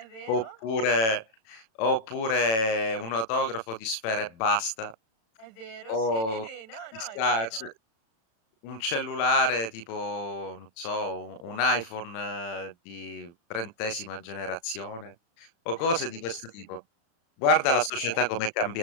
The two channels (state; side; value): late; right; 36 ms